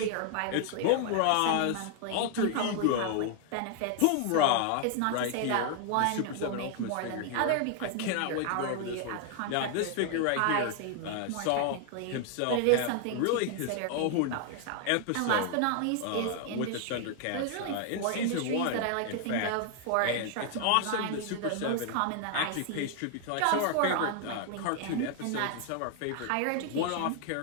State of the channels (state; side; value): different; both; correlation 0.00